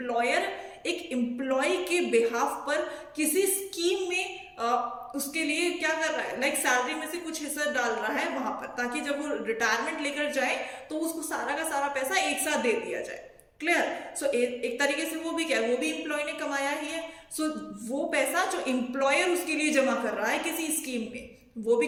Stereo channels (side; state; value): both; identical; correlation 1.00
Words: एक एम्प्लॉय के बिहाफ पर किसी स्कीम में उसके लिए क्या कर रहा है, लाइक सैलरी में से कुछ हिस्सा डाल रहा है वहां पर, ताकि जब वो रिटायरमेंट लेकर जाए तो उसको सारा का सारा पैसा एक साथ दे दिया जाए। क्लियर? सो एक तरीके से वो भी क्या है, वो भी एम्प्लॉय ने कमाया ही है। सो वो पैसा जो एम्प्लॉयर उसके लिए जमा कर रहा है किसी स्कीम में, वो भी